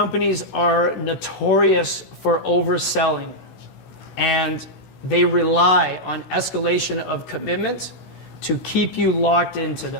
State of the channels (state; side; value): late; right; 16 ms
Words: are notorious for overselling, and they rely on escalation of commitment to keep you locked into